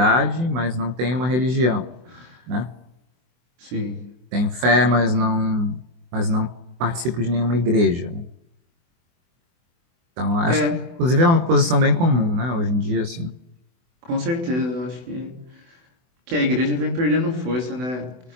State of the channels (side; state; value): left; late; 24 ms